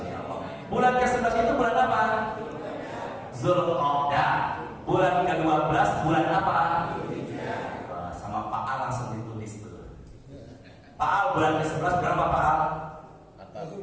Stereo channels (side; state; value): both; identical; correlation 1.00